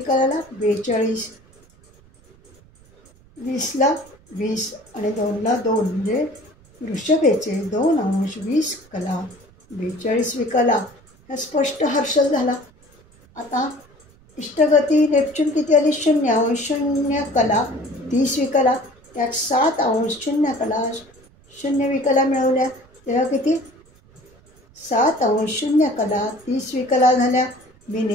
42, 20ला 20 आणि 2ला 2 म्हणजे वृषभेचे 2 अंश 20 कला 42 विकला. हा स्पष्ट हर्षल झाला. आता इष्टगती नेपच्यून किती आली? 0 अंश 0 कला 30 विकला. त्यात 7 अंश 0 कला 0 विकला मिळवल्या. तेव्हा किती? 7 अंश 0 कला 30 विकला झाल्या.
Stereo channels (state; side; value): noise; right; rumble, 28 dB below the sound